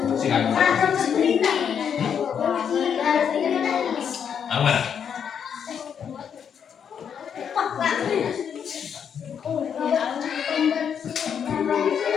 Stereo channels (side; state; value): right; quieter; 7.8 dB